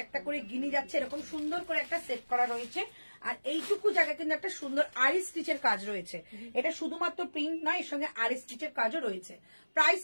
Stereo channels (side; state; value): both; inverted; correlation -1.00